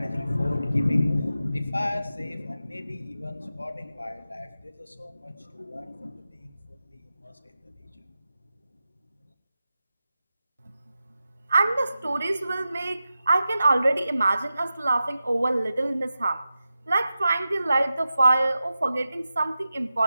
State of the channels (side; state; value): both; inverted; correlation -0.92